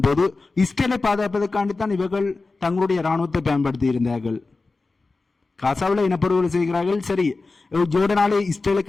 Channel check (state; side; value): quieter; right; 3.7 dB